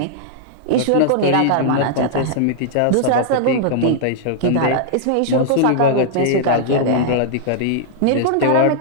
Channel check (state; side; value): different; both; correlation -0.01